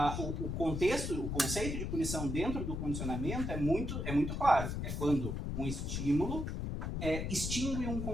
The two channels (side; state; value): left; noise; rumble, 3 dB below the sound